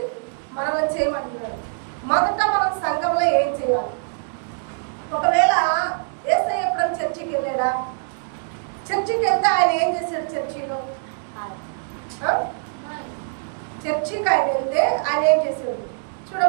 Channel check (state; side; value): silent; left; digital silence